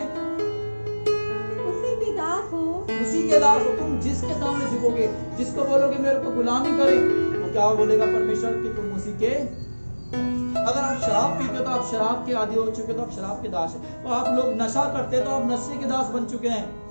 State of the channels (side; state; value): both; inverted; correlation -1.00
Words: उसी के दास हो तुम। जिसके सामने झुकोगे, जिसको बोलोगे मेरे को गुलामी करे, तो क्या बोलेगा परमेश्वर कि तुम उसी के। अगर आप शराब पीते हो तो आप शराब के आदी हो चुके, तो आप शराब के दास हैं। तो आप लोग नशा करते हैं तो आप नशे के दास बन चुके हैं।